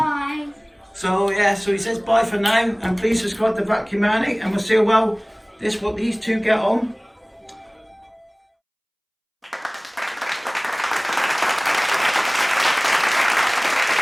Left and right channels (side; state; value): both; identical; correlation 1.00